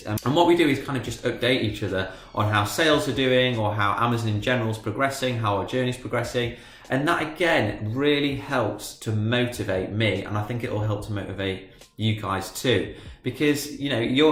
And what we do is kind of just update each other on how sales are doing, or how Amazon in general is progressing, how our journey is progressing. And that, again, really helps to motivate me, and I think it will help to motivate you guys too, because you know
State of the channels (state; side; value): identical; both; correlation 1.00